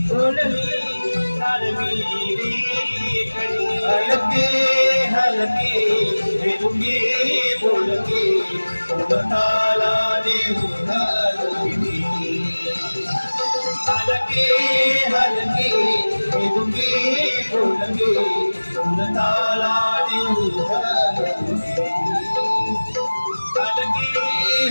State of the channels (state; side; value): inverted; both; correlation -1.00